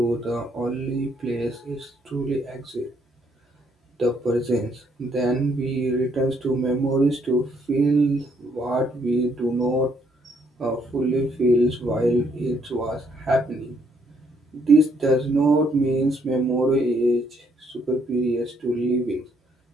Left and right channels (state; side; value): normal; both; correlation 0.70